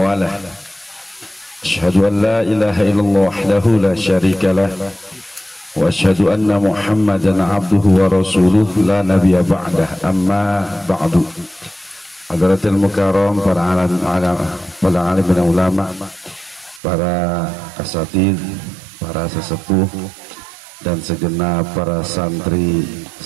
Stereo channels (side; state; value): left; drops out; at 16.8 s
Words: Asyhadu an la ilaha illallah wahdahu la syarika lah wa asyhadu anna Muhammadan abduhu wa rasuluh la nabiyya ba'dah, amma ba'du. Hadratil mukarram, para alim dan ulama, para asatidz, para sesepuh, dan segenap para santri